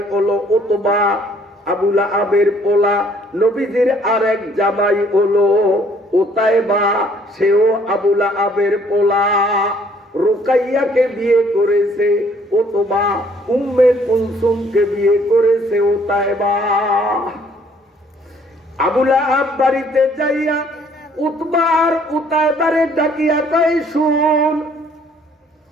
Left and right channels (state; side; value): normal; both; correlation 0.61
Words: হলো উতবা, আবু লাহাবের পোলা। নবীজির আরেক জামাই হলো উতায়বা, সেও আবু লাহাবের পোলা। রুকাইয়াকে বিয়ে করেছে উতবা, উম্মে কুলসুমকে বিয়ে করেছে উতায়বা। আবু লাহাব বাড়িতে যাইয়া উতবা আর উতায়বারে ডাকিয়া কয়, শুন,